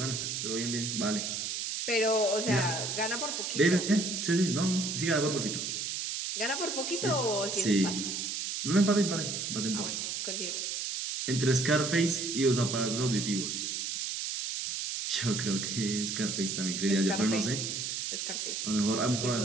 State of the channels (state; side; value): noise; right; hiss, 3 dB below the sound